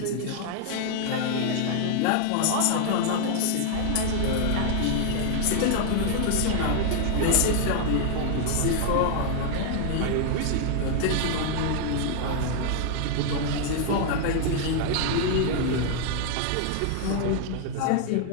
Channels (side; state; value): both; different; correlation 0.00